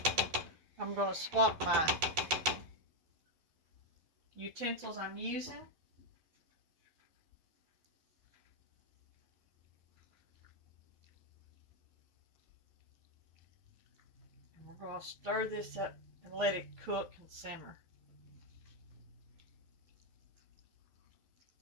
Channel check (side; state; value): left; late; 12 ms